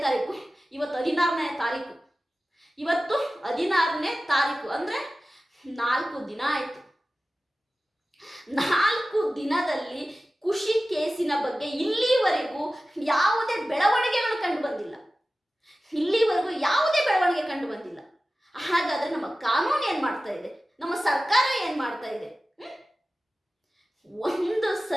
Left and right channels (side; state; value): both; normal; correlation 0.95